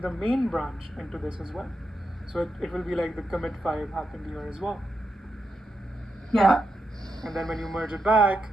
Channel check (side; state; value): both; normal; correlation 0.85